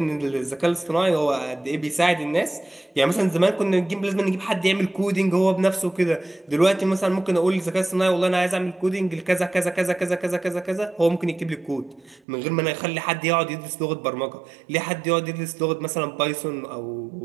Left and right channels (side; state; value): left; drops out; at 12.2 s